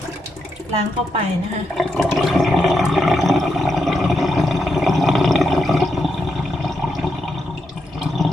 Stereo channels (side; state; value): both; normal; correlation 0.83